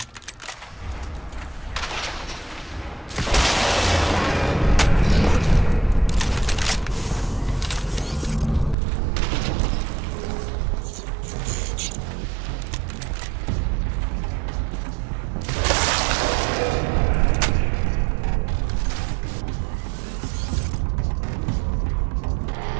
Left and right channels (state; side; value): drops out; left; at 8.8 s